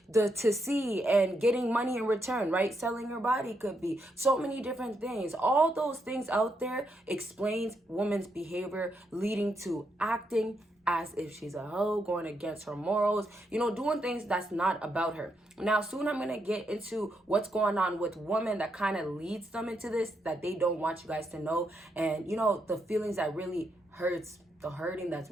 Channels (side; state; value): both; normal; correlation 0.80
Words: see and getting money in return, right? Selling your body could be so many different things. All those things out there explains women's behavior, leading to acting as if she's a hoe, going against her morals, doing things that's not about her. Now, soon I'm going to get into what's going on with women that kind of leads them into this, that they don't want you guys to know. And, the feelings that really hurts, the hurting that's